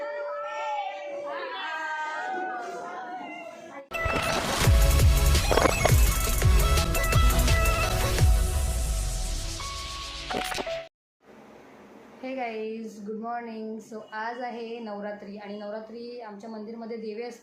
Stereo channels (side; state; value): both; identical; correlation 1.00